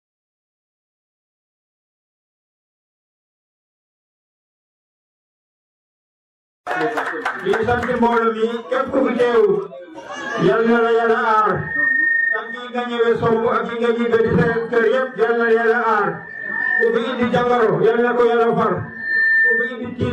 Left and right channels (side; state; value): both; identical; correlation 1.00